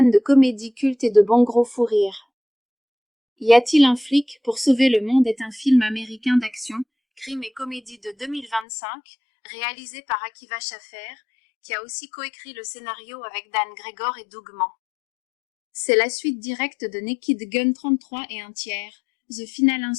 de comédie culte et de bons gros fous rires. Y a-t-il un flic pour sauver le monde est un film américain d'action, crime et comédie de 2025, réalisé par Akiva Schaffer, qui a aussi coécrit le scénario avec Dan Gregor et Doug Mann. C'est la suite directe de Naked Gun 33 et un tiers, The Final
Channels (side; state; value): right; drops out; at 8.7 s